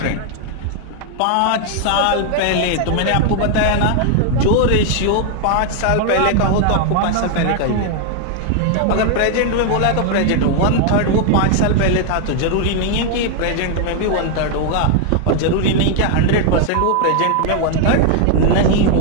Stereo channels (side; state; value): both; different; correlation 0.00